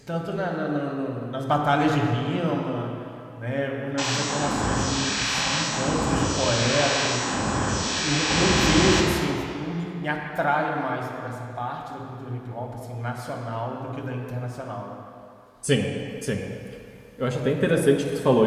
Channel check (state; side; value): identical; both; correlation 1.00